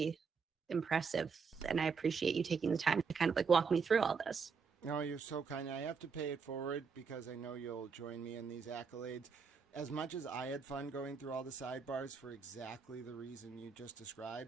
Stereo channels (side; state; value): left; quieter; 5.6 dB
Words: impressive, and I appreciate you taking the time to kind of like walk me through all this. No, you're so kind. I have to pay it forward because I know you'll join me in these accolades. As much as I had fun going through all the sidebars for exactly the reason you just